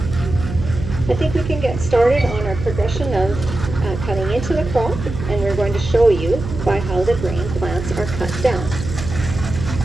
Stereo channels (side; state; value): right; noise; hum, 8 dB below the sound